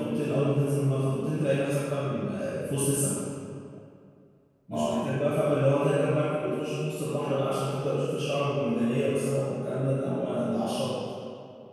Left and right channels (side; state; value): both; identical; correlation 1.00